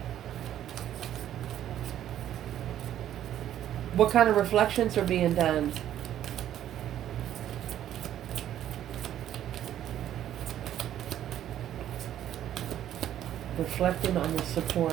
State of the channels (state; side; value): quieter; left; 11.3 dB